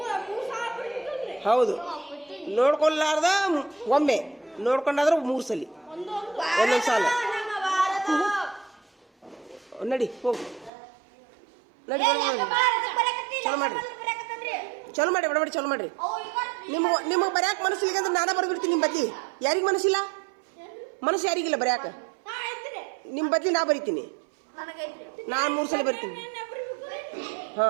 ಹೌದು. ನೋಡ್ಕೊಲಾರ್ದ ಒಮ್ಮೆ, ನೋಡ್ಕೊಂಡಾದ್ರೆ 3 ಸಲಿ ಒಂದೊಂದು ಸಾಲ. ನಡಿ ಹೋಗು ನಡಿ. ಚಲೋ ಮಾಡಿ ಬಡಬಡಿ ಚಲೋ ಮಾಡ್ರಿ. ನಿಮಗೆ ಬರ್ಯಾಕ ಮನಸ್ಸಿಲ್ಲ ಅಂದ್ರೆ ನಾನೇ ಬರ್ಬಿಡ್ತೀನಿ ನಿಮ್ಮ ಬದ್ಲಿ. ಯಾರಿಗೆ ಮನಸ್ಸಿಲ್ಲ? ಮನಸ್ಸು ಯಾರಿಗಿಲ್ಲ ಬರ್ಯಾಕ? ನಿಮ್ಮ ಬದ್ಲಿ ನಾ ಬರಿತೀನಿ. ನಾನು 3 ಸಲ ಬರ್ತೀನಿ.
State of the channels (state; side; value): drops out; left; at 10.7 s